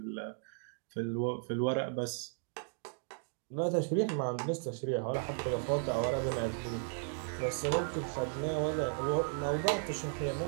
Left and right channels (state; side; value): silent; left; digital silence